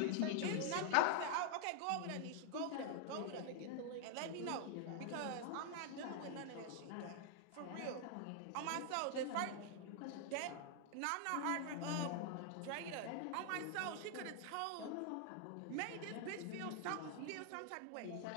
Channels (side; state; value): both; different; correlation 0.00